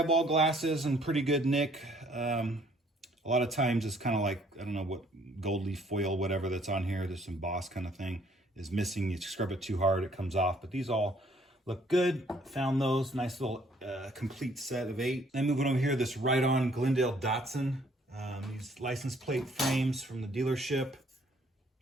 glasses in pretty good nick. A lot of times it's kind of like, I don't know what, gold leaf foil, whatever that's on here, this embossed kind of thing is missing. You scrub it too hard, it comes off. But these all look good. Found those. Nice little complete set of 8. Then moving over here, this Ride-On Glendale Datsun. These license plate frames from the dealership.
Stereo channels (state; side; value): normal; both; correlation 0.62